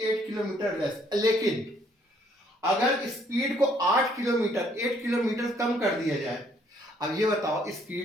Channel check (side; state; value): both; normal; correlation 0.66